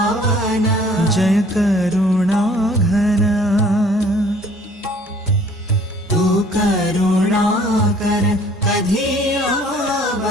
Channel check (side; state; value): both; normal; correlation 0.55